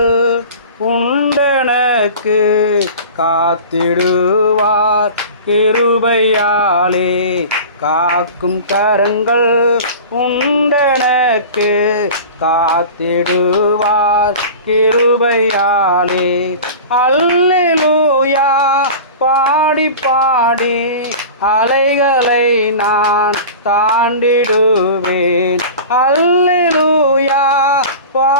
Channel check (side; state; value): both; inverted; correlation -0.36